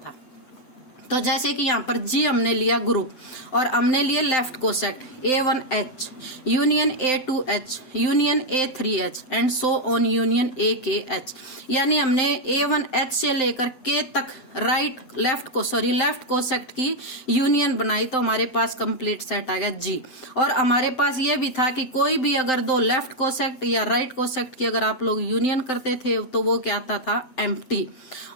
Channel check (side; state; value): right; late; 7.8 ms